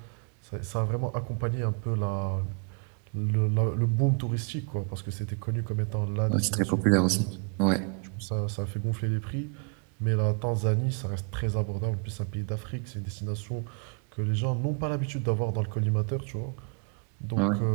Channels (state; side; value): quieter; left; 39.6 dB